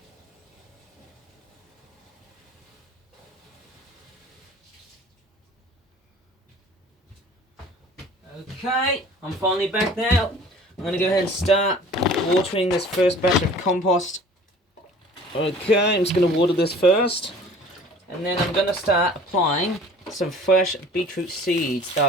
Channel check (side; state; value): both; normal; correlation 0.47